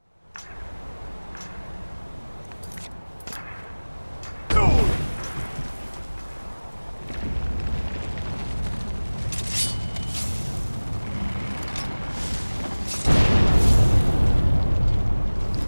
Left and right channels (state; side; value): inverted; both; correlation -1.00